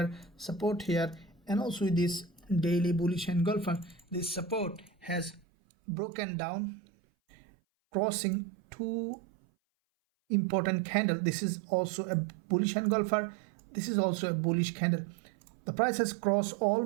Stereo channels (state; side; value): drops out; left; at 5.4 s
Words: support here, and also this daily bullish engulfer. This support has broken down, crossing two important candle. This is also a bullish engulfer, this is also a bullish candle. The price has crossed